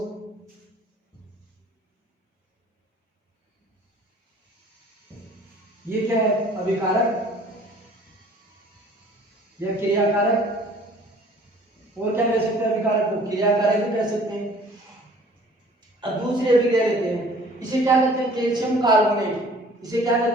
ये क्या है, अभिकारक या क्रियाकारक, और क्या कह सकते हैं अभिकारक को, क्रियाकारक भी कह सकते हैं। अब दूसरी अभिक्रिया लेते हैं, इसे क्या कहते हैं, कैल्शियम कार्बोनेट, इसे क्या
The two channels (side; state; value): both; normal; correlation 0.52